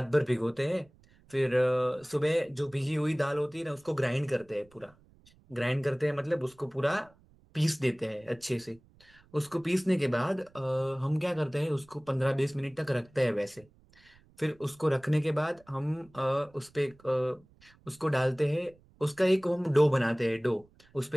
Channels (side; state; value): right; noise; rumble, 29 dB below the sound